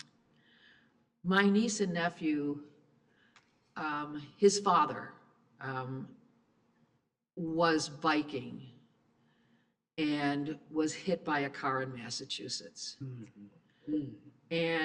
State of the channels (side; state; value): both; identical; correlation 1.00